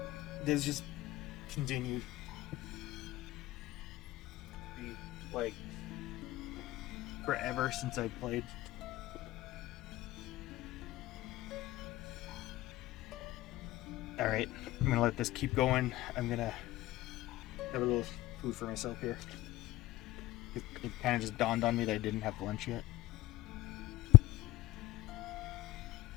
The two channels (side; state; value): right; quieter; 17.8 dB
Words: There's just continued. Like, forever since I played. Alright, I'm gonna let this keep going. I'm gonna have a little food for myself here. It kind of just dawned on me that I didn't have lunch yet.